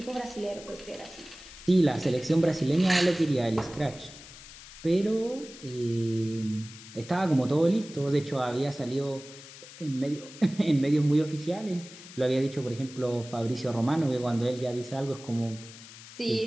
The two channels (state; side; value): noise; left; hiss, 17 dB below the sound